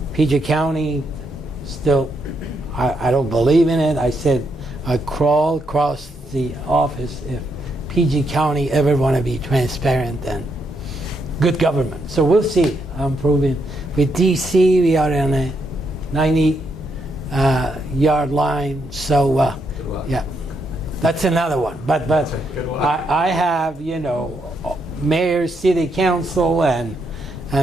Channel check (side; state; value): both; normal; correlation 0.78